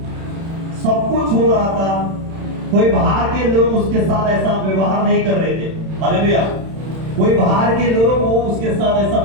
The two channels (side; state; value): left; late; 31 ms